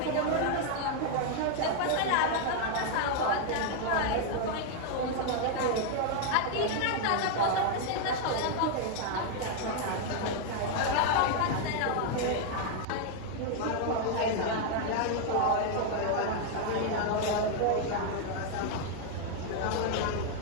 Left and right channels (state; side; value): different; both; correlation 0.00